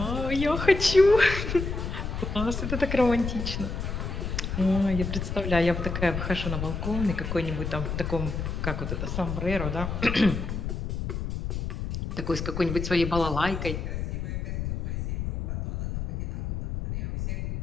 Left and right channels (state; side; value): noise; left; rumble, 3 dB below the sound